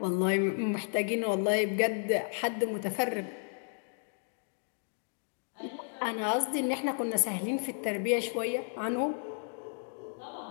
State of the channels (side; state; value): right; silent; 56 dB below the other